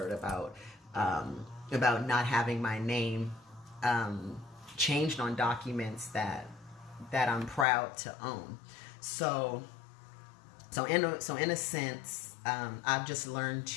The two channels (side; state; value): right; drops out; at 7.7 s